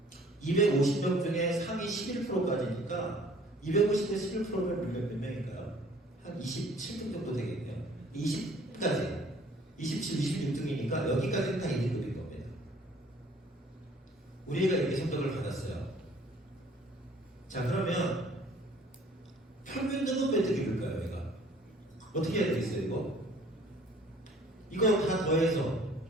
250명 중에 상위 11%까지니까 250대 11%면 몇 명인가요? 한 27등 정도 되겠네요. 20까지. 27, 26등이니까 여기까지는 다 2등급인 겁니다. 우리가 이렇게 성적을 받았어요. 자, 그러면 평균 등급 몇 등급일까요, 얘가? 어떻게 해야 되겠어요, 이거? 이거 다 더해서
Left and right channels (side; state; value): both; normal; correlation 0.55